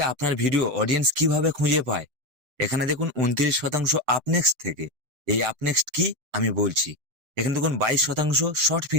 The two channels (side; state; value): left; late; 6.8 ms